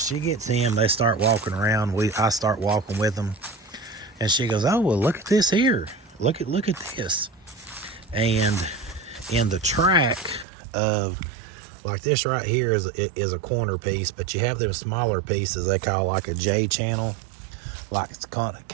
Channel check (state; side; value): drops out; left; at 10.5 s